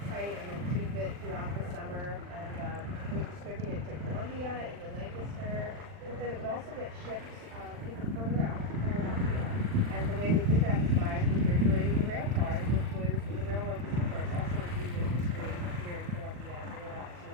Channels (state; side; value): late; left; 40 ms